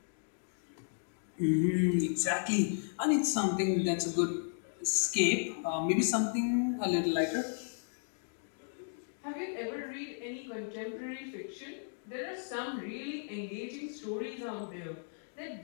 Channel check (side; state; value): right; silent; digital silence